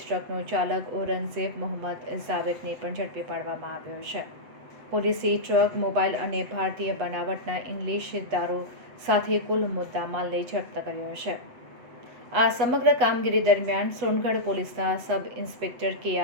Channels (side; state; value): left; late; 7.9 ms